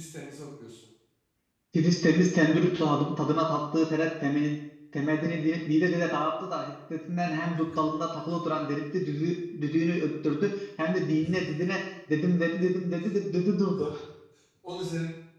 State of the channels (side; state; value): both; identical; correlation 1.00